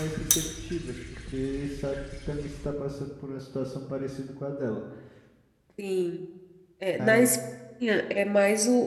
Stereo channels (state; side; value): identical; both; correlation 1.00